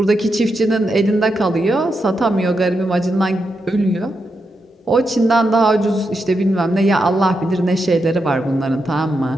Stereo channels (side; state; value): both; normal; correlation 0.84